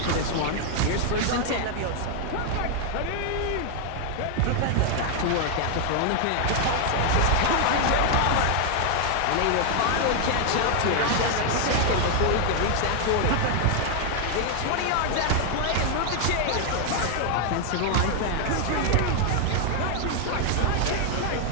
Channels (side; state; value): both; different; correlation 0.00